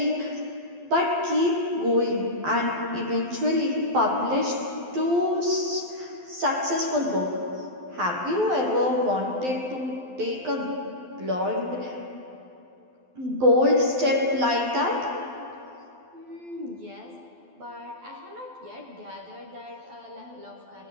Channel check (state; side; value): late; left; 12 ms